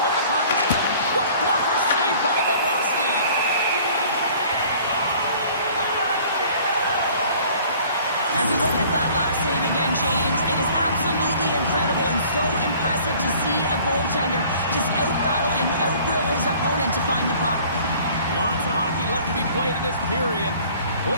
with the puck. What a blocker save by Bobrovsky. As we look at that last save again, James, it is absolutely incredible and so impressive to see a goaltender just out-battle and out-will his opponent to find the puck. Lots of hockey left to be played in this period. We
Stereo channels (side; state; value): both; inverted; correlation -0.51